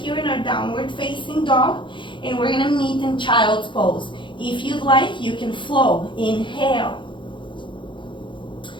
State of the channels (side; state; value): right; late; 0.23 ms